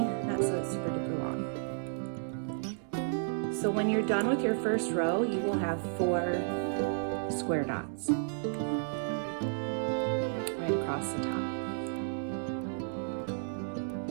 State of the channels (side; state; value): left; silent; digital silence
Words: so it's super duper long. So when you're done with your first row, you will have 4 square knots right across the top.